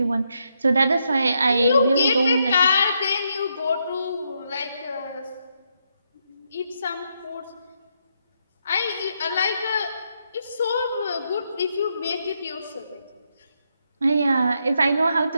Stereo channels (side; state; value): both; inverted; correlation -0.79